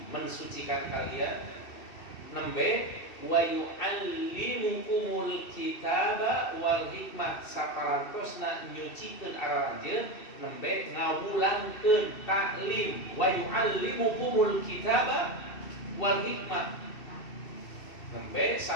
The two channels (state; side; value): late; right; 2.7 ms